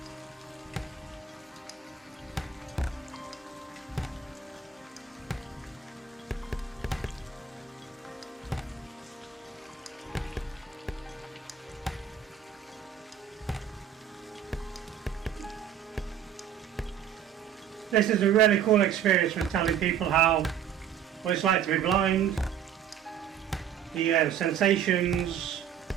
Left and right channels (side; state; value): left; quieter; 8.5 dB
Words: This is a really cool experience for telling people what it's like to be blind, the sensations,